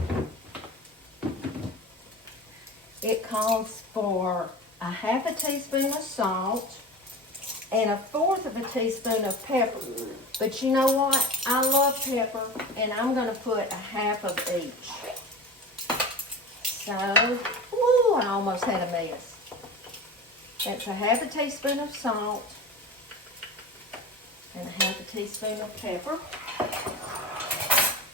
It calls for a 1/2 teaspoon of salt and 1/4 teaspoon of pepper. But you know what? I love pepper, and I'm going to put 1/2 of each. So, woo, I almost had a mess. That's 1/2 teaspoon of salt and 1/2 teaspoon of pepper.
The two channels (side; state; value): both; normal; correlation 0.32